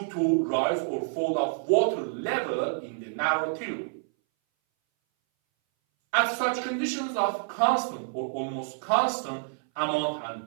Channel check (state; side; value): silent; left; 59 dB below the other